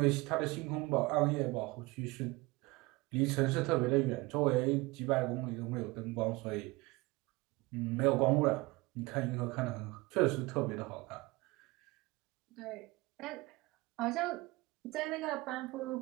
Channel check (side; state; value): left; quieter; 22.9 dB